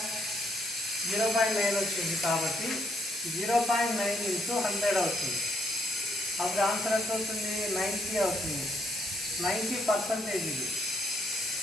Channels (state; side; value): normal; both; correlation 0.73